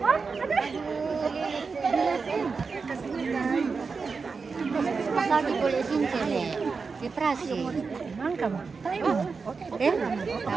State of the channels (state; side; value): quieter; left; 4.8 dB